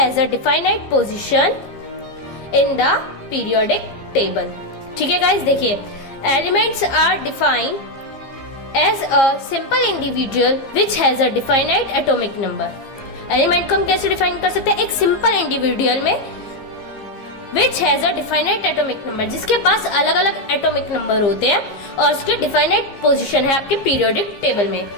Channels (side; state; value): right; late; 15 ms